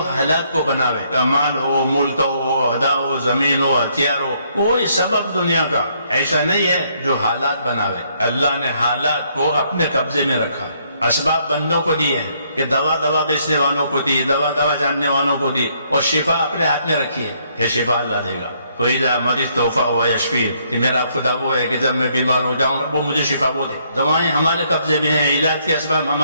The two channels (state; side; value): inverted; both; correlation -0.70